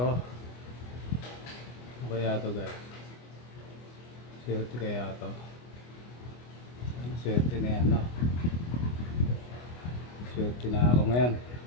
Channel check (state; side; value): late; right; 25 ms